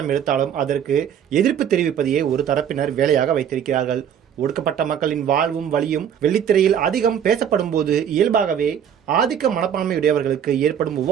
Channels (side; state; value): left; quieter; 8.9 dB